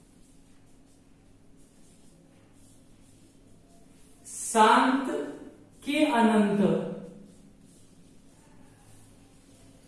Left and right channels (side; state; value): both; identical; correlation 1.00